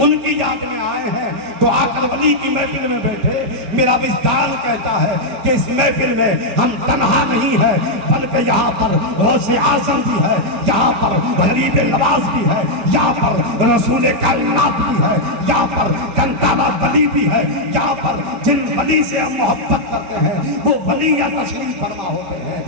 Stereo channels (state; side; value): late; left; 5.1 ms